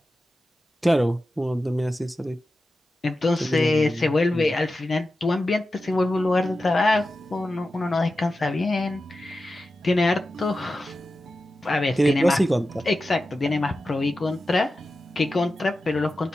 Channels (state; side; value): normal; both; correlation 0.92